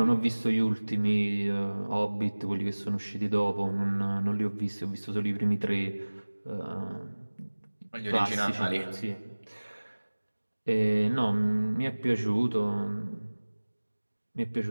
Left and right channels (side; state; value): both; inverted; correlation -1.00